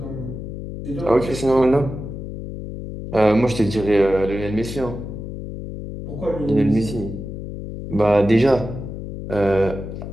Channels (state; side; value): noise; left; hum, 8 dB below the sound